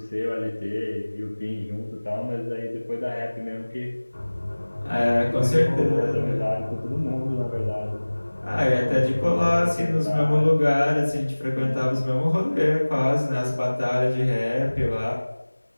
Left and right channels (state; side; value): inverted; both; correlation -1.00